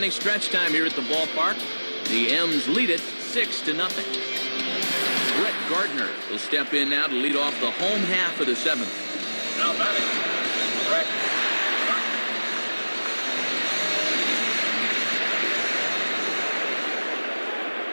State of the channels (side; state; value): both; inverted; correlation -1.00